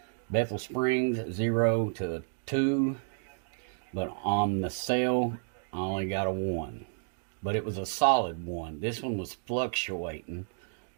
Bethel Springs 0 to 2. But on the cell, I only got a 1. But it was a solid 1. This one was fluctuating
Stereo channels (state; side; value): silent; left; digital silence